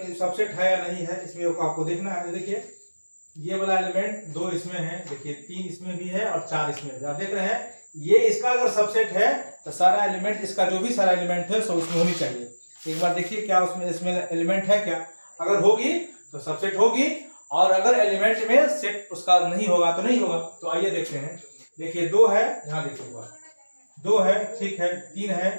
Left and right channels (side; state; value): both; inverted; correlation -1.00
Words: सबसेट है या नहीं है, इसमें आपको देखना है। देखिए, ये वाला एलिमेंट 2 इसमें है, देखिए 3 इसमें भी है और 4 इसमें भी। आप देख रहे हैं, ये इसका अगर सबसेट है तो सारा एलिमेंट, इसका जो भी सारा एलिमेंट है सब उसमें होनी चाहिए। एक बार देखिए क्या इसमें एलिमेंट है क्या। अगर होगी तो सबसेट होगी, और अगर एलिमेंट में सेट उसका नहीं होगा तो नहीं होगा। तो आइए देखते हैं। देखिए 2 है, यहाँ देखिएगा 2 है, ठीक है, 3 है,